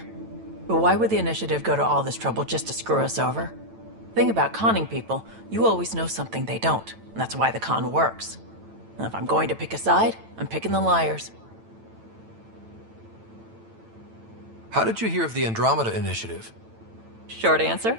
But why would the initiative go to all this trouble just to screw us over? Thing about conning people, you always know something they don't. And that's why the con works. And if I'm going to pick a side, I'm picking the liars. How did you hear of the Andromeda initiative? Short answer,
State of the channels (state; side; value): late; left; 9.0 ms